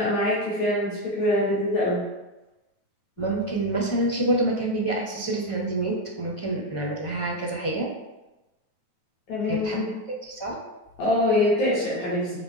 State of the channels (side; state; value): right; late; 9.2 ms